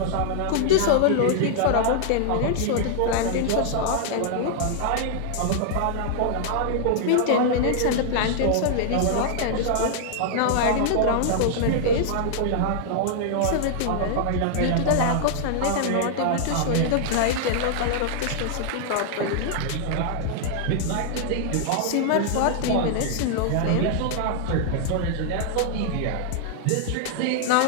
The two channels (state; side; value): different; both; correlation -0.01